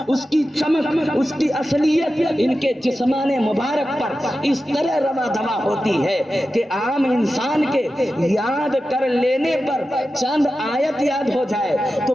اس کی چمک، اس کی اصلیت ان کے جسمان مبارک پر اس طرح روا دوا ہوتی ہے کہ عام انسان کے یاد کر لینے پر چند آیت یاد ہو جائے تو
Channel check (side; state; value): both; normal; correlation 0.92